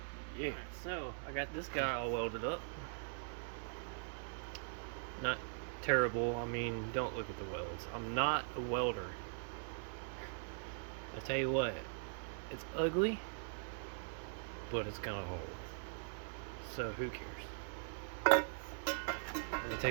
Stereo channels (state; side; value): silent; left; digital silence